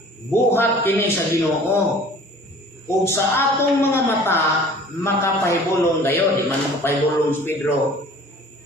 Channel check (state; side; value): normal; both; correlation 0.47